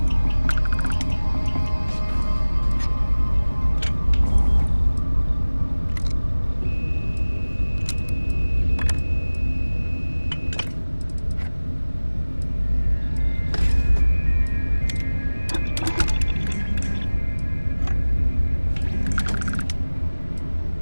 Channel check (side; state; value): both; inverted; correlation -1.00